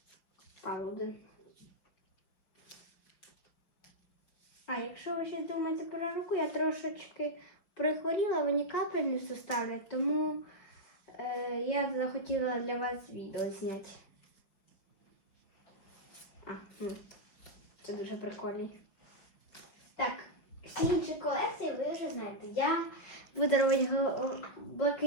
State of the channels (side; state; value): right; late; 5.4 ms